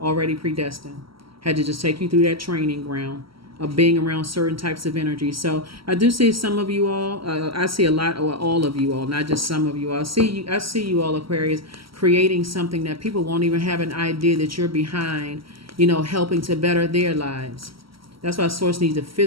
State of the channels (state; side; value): late; left; 0.75 ms